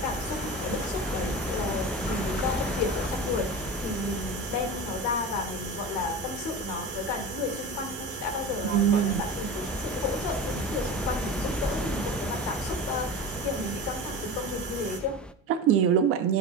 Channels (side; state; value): both; normal; correlation 0.29